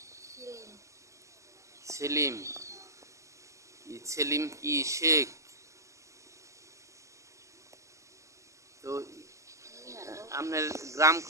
সেলিম। সেলিম। সেলিম কি শেখ? তো আপনার গ্রাম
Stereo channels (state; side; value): late; left; 0.15 ms